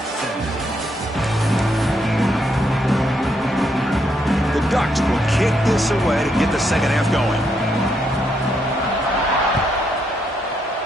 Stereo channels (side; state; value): both; normal; correlation 0.77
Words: The Ducks will kick this away to get the second half going.